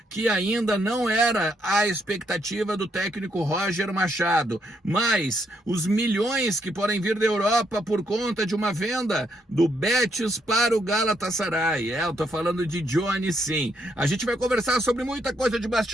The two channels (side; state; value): both; normal; correlation 0.75